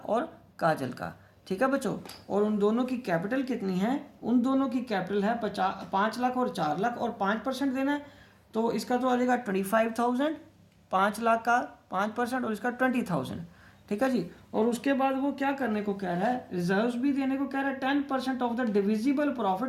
काजल का। ठीक है बच्चों, और उन दोनों की कैपिटल कितनी है? उन दोनों की कैपिटल है 5 लाख और 4 लाख, और 5% देना है। तो इसका तो आ जाएगा 25,000, 5 लाख का 5% और इसका 20,000। ठीक है जी। और उसके बाद वो क्या करने को कह रहा है, रिजर्व्स भी देने को कह रहा है। 10% of the divisible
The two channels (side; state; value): both; identical; correlation 1.00